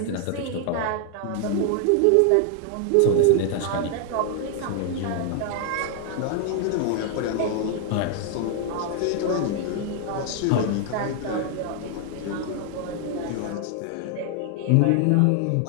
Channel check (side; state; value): both; different; correlation 0.00